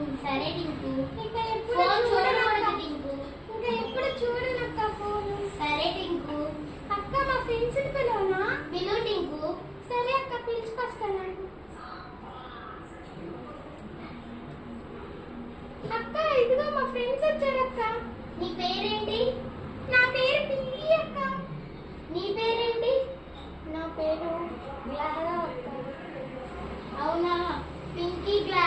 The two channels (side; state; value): both; identical; correlation 1.00